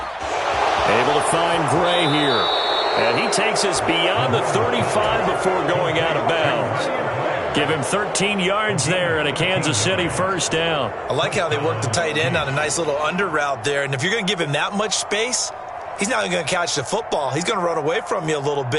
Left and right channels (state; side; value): identical; both; correlation 1.00